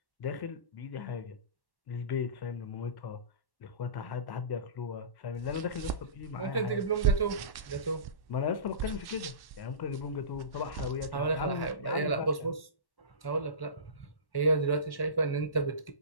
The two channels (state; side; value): late; right; 1.1 ms